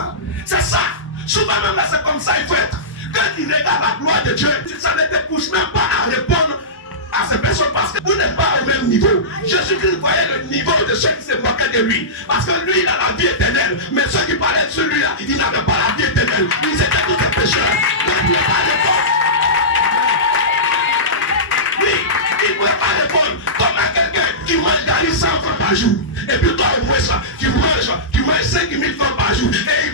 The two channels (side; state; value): both; normal; correlation -0.18